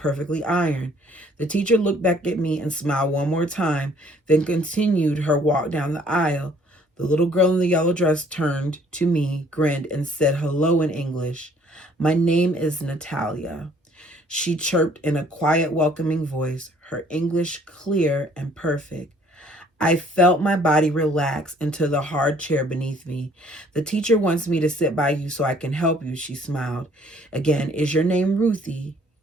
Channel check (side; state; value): both; normal; correlation 0.59